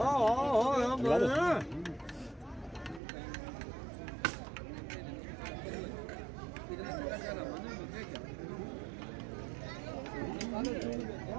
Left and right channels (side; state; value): left; drops out; at 3.0 s